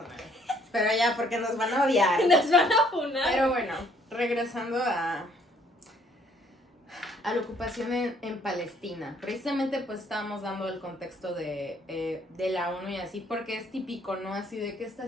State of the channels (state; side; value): normal; both; correlation 0.63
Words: Pero ya, porque nos van a odiar. Nos van a funar. Pero bueno, regresando a la ocupación en Palestina. Precisamente pues estábamos dando el contexto de la ONU y así, porque es típico, ¿no? Así de qué está